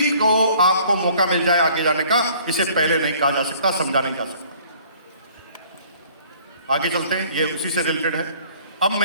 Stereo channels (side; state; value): both; inverted; correlation -0.56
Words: को आपको मौका मिल जाए आगे जाने का। इसे पहले नहीं कहा जा सकता, समझा नहीं जा सकता। आगे चलते हैं, ये उसी से रिलेटेड है। अब